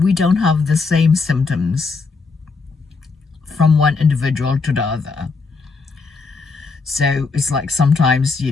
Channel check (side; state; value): right; quieter; 4.4 dB